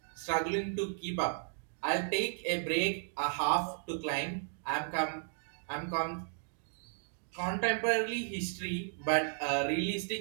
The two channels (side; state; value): left; silent; digital silence